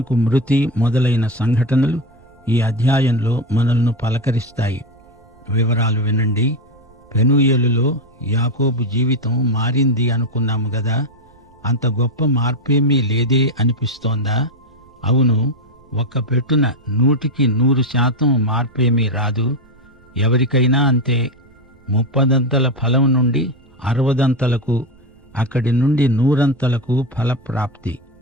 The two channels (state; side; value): noise; right; rumble, 29 dB below the sound